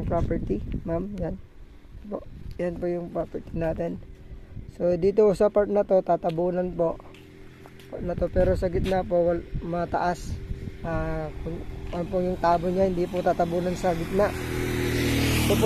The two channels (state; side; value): identical; both; correlation 1.00